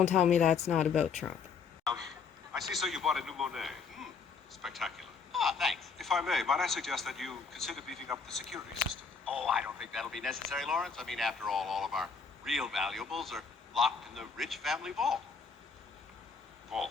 tell me that's not about Trump. I see, so you bought a new Monet. Spectacular. Ah, thanks. If I may, might I suggest that you consider beefing up the security system? Oh, I don't think that'll be necessary, Lawrence. I mean, after all of our real valuables are locked in the Rich family vault.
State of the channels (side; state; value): right; quieter; 5.5 dB